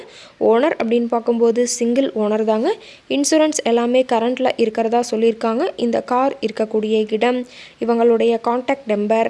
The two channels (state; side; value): identical; both; correlation 1.00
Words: ஓனர் அப்படின்னு பார்க்கும்போது சிங்கிள் ஓனர் தாங்க. இன்சூரன்ஸ் எல்லாமே கரண்ட்டில் இருக்கிறதா சொல்லியிருக்காங்க. இந்த கார் இருக்கக்கூடிய இடம், இவங்களுடைய காண்டாக்ட் நம்பர்